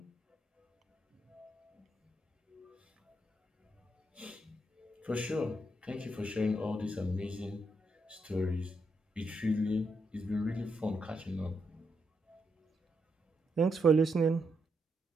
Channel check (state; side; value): normal; both; correlation 0.80